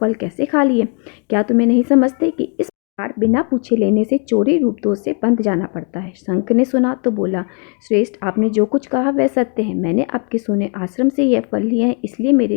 कैसे खा लिए? क्या तुम्हें नहीं समझते कि इस बिना पूछे लेने से चोरी रूप दोष से बंध जाना पड़ता है? शंख ने सुना तो बोला, श्रेष्ठ, आपने जो कुछ कहा वह सत्य है। मैंने आपके सोने आश्रम से यह फल लिए हैं, इसलिए मेरे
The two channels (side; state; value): right; quieter; 38.4 dB